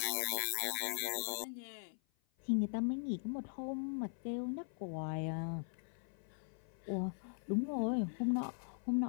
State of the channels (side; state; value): right; silent; 51 dB below the other